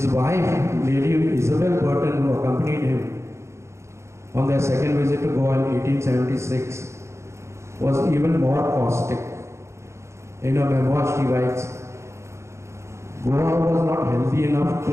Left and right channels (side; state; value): left; late; 0.13 ms